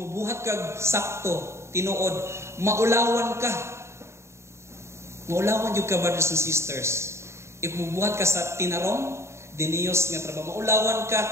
kag sakto, tinuod, maulawan ka. Maulawan yung ka, brothers and sisters. If mubuhat ka sa tinarong, diniyos nga trabaho, maulawan ka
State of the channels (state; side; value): late; left; 0.13 ms